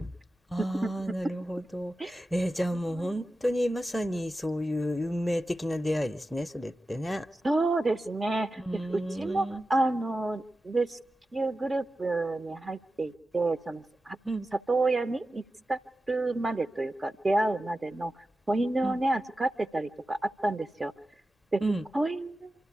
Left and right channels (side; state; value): both; normal; correlation 0.93